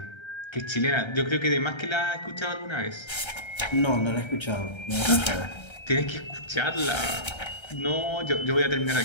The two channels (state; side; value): late; right; 1.3 ms